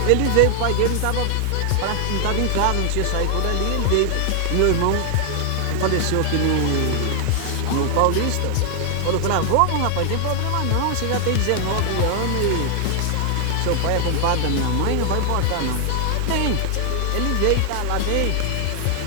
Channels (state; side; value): different; both; correlation 0.00